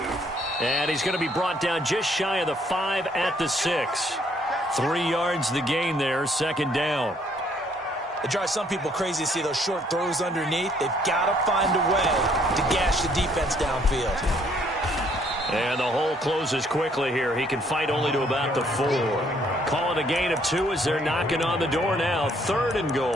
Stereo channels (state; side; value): normal; both; correlation 0.65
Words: And he's going to be brought down just shy of the 5 at the 6. 3 yards the gain there, second down. It drives some people crazy to see those short throws underneath. They've got to find a way to gash the defense downfield. And the hole closes quickly here. He can fight only to about the 4. Call it a gain of 2 as they're knocking on the door now. 3rd and